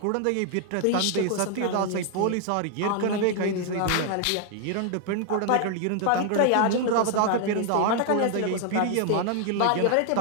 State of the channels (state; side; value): different; both; correlation 0.00